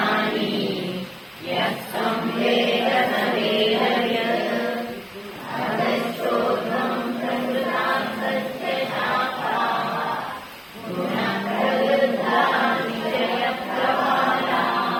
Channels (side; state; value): both; identical; correlation 1.00